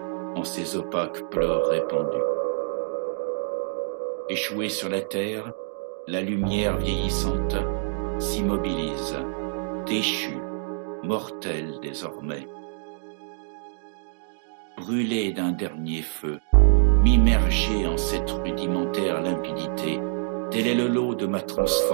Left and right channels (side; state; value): left; silent; digital silence